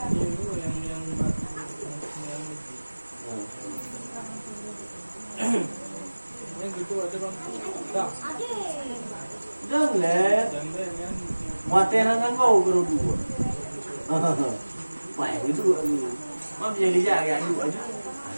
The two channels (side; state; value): both; inverted; correlation -1.00